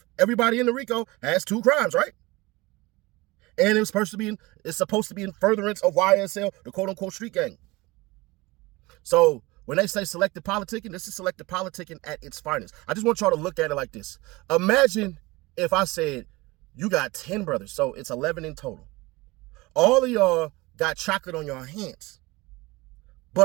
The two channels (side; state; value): left; quieter; 22.2 dB